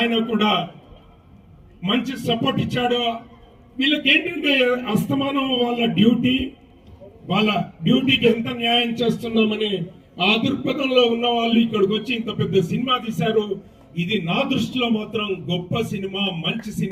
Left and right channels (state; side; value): identical; both; correlation 1.00